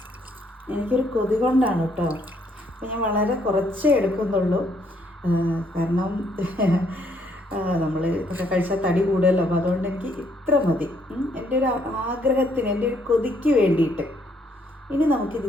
എനിക്കൊരു കൊതി കൊണ്ടാണ് കേട്ടോ. അപ്പോൾ ഞാൻ വളരെ കുറച്ചേ എടുക്കുന്നുള്ളൂ. കാരണം നമ്മൾ ഒക്കെ കഴിച്ചാൽ തടി കൂടുമല്ലോ. അപ്പോൾ അതുകൊണ്ട് എനിക്ക് ഇത്ര മതി, എൻ്റെ ഒരു ആഗ്രഹത്തിന്, എൻ്റെ ഒരു കൊതിക്ക് വേണ്ടിയിട്ട്. ഇനി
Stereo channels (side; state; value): both; normal; correlation 0.69